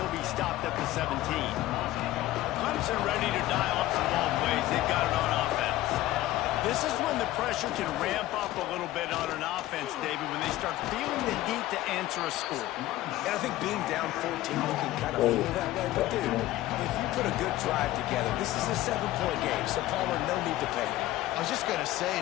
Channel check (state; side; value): quieter; right; 15.7 dB